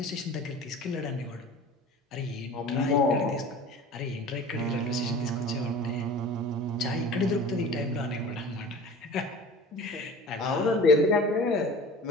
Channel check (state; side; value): normal; both; correlation 0.40